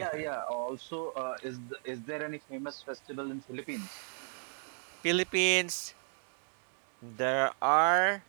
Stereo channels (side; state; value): left; silent; digital silence